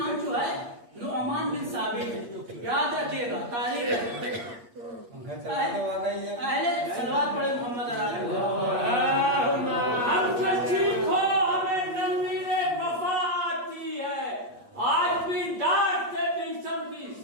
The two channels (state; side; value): late; left; 8.5 ms